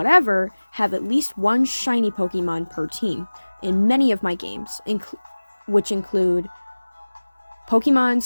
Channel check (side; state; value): both; inverted; correlation -1.00